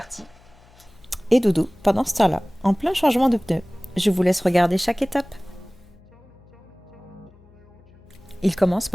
Et Doudou, pendant ce temps-là, en plein changement de pneu. Je vous laisse regarder chaque étape. Il commence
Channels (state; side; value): noise; left; hum, 27 dB below the sound